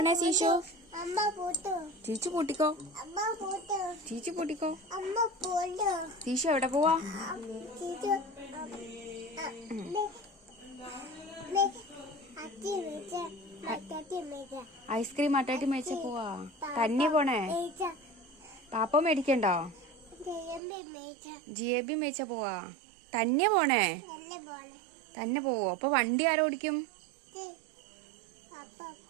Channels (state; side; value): drops out; left; at 20.6 s